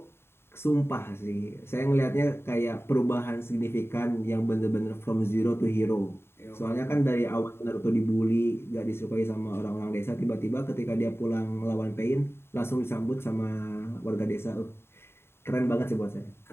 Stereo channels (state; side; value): late; right; 0.12 ms